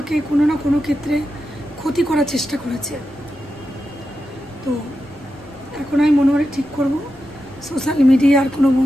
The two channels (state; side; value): noise; left; rumble, 26 dB below the sound